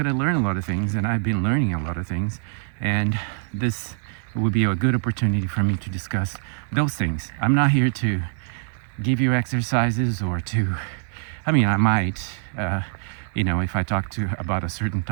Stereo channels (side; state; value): left; silent; digital silence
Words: to learn a lot of things, and I've been learning a lot of things. And this would be a good opportunity for me to discuss those things. I'm not here to give you exercises or to, I mean, I might, if I talk about a certain